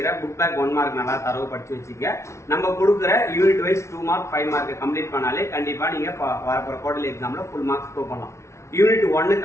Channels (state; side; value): late; right; 0.13 ms